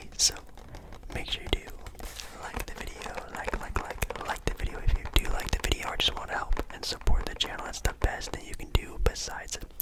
So make sure you do like the video, like the video if you do like the video or just want to help and support the channel. That's the best thing you can do besides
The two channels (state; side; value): identical; both; correlation 1.00